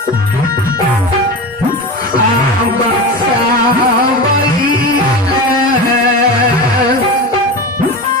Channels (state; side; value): normal; both; correlation 0.26